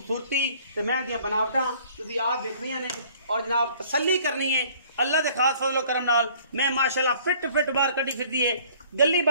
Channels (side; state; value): both; inverted; correlation -0.55